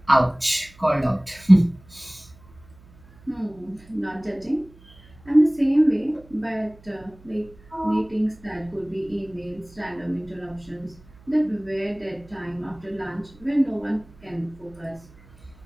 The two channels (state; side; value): noise; right; hum, 25 dB below the sound